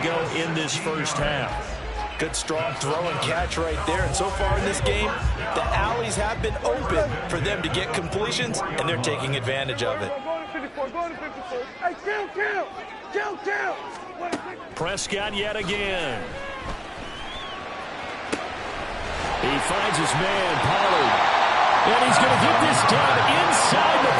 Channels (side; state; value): both; identical; correlation 1.00